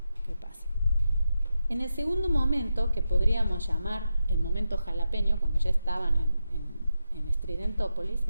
qué pasa. En el segundo momento, que podríamos llamar el momento jalapeño, cuando ya estaban en Estridentópolis,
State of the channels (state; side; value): inverted; both; correlation -0.88